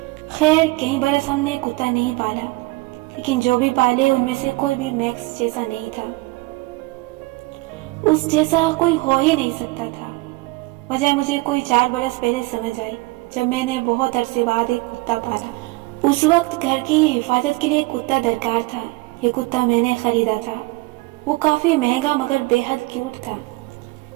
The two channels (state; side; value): quieter; left; 23.1 dB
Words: خیر کئی برس ہم نے کتا نہیں پالا، لیکن جو بھی پالے ان میں سے کوئی بھی میکس جیسا نہیں تھا، اس جیسا کوئی ہو ہی نہیں سکتا تھا۔ وجہ مجھے کوئی 4 برس پہلے سمجھ آئی، جب میں نے بہت عرصے بعد ایک کتا پالا۔ اس وقت گھر کی حفاظت کے لیے کتا درکار تھا۔ یہ کتا میں نے خریدا تھا، وہ کافی مہنگا مگر بے حد کیوٹ تھا،